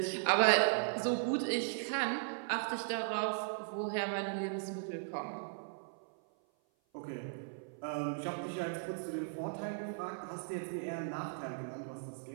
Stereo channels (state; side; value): silent; left; 53 dB below the other